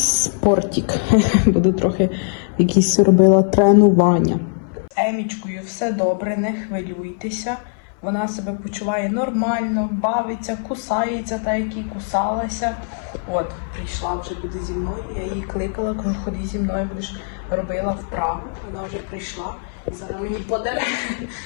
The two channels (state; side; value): silent; right; 60 dB below the other